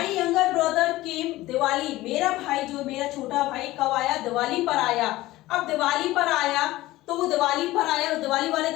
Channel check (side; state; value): right; quieter; 17.5 dB